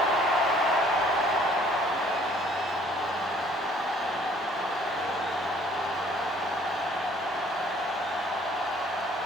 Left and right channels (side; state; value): both; normal; correlation 0.58